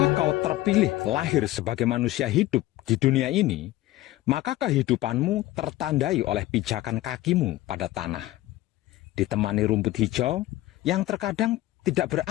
kau terpilih lahir sebagai manusia hidup di dunia ini, maka kehidupanmu tertandai oleh pijakan kakimu pada tanah, ditemani rumput hijau yang terkadang tidak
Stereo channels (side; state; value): right; quieter; 16.2 dB